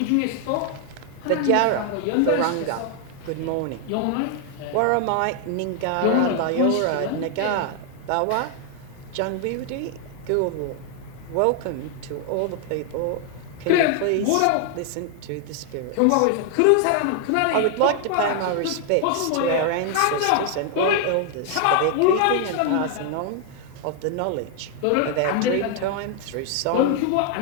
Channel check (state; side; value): different; both; correlation 0.00